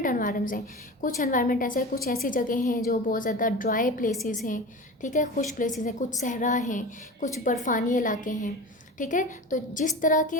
एनवायरनमेंट्स हैं। कुछ एनवायरनमेंट ऐसे हैं, कुछ ऐसी जगह हैं जो बहुत ज़्यादा ड्राई प्लेसेस हैं, ठीक है, खुश प्लेसेस हैं, कुछ सहरा हैं, कुछ बर्फानी इलाके हैं, ठीक है। तो जिस तरह के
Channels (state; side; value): normal; both; correlation 0.31